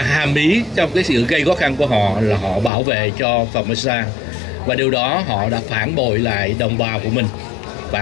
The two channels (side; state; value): right; drops out; at 2.7 s